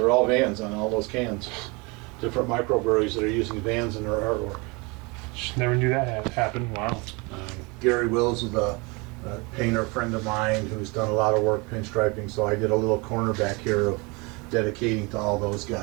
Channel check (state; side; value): quieter; left; 27.8 dB